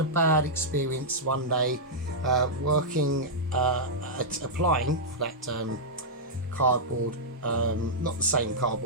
a bad experience one day working applying for that cardboard, not the same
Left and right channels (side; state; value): both; normal; correlation -0.09